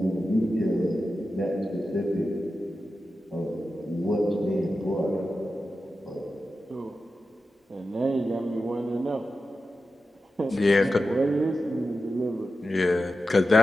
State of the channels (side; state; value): both; normal; correlation 0.92